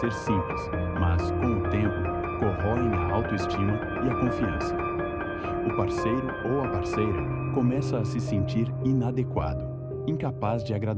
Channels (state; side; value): identical; both; correlation 1.00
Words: simples, mas, com o tempo, corroem a autoestima e a confiança. O parceiro ou a parceira começa a se sentir inadequado, incapaz de